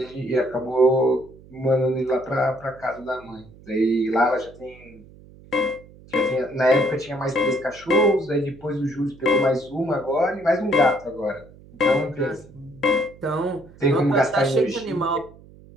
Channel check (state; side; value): noise; right; hum, 22 dB below the sound